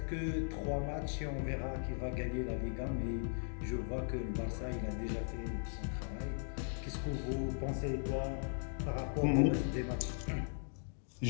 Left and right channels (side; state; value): right; silent; digital silence